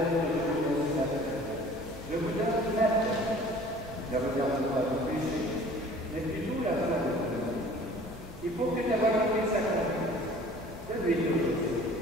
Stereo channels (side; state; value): both; normal; correlation 0.48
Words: de venir ce matin. Je vous donne la paix. Ne regarde pas vos péchés, mais plutôt la volonté de Dieu. Il faut que ta volonté s'accomplisse. Donne-lui aujourd'hui.